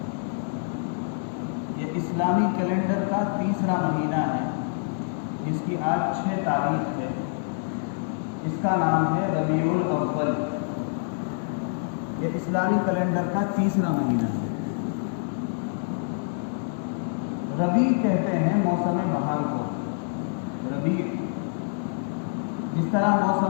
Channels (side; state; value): right; silent; digital silence